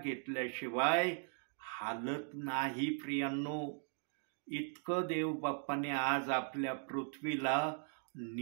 हालत नाही. प्रियांनो, इतकं देव बाप्पाने आज आपल्या पृथ्वीला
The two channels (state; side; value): silent; left; 52 dB below the other